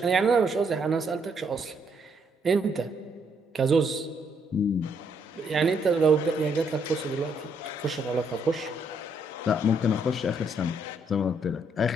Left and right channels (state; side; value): normal; both; correlation 0.72